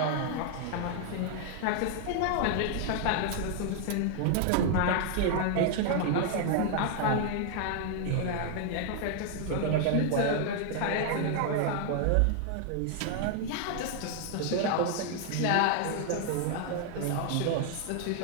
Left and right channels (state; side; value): different; both; correlation 0.00